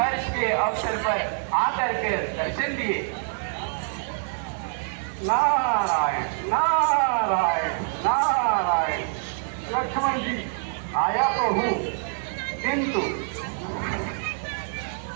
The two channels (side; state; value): left; silent; 61 dB below the other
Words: के अवसर पर आकर के दर्शन दिए। नारायण नारायण नारायण। लक्ष्मण जी, आया तो हूँ, किंतु